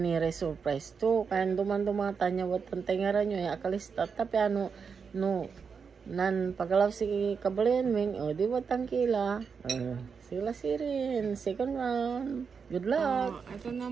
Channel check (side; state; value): left; quieter; 5.9 dB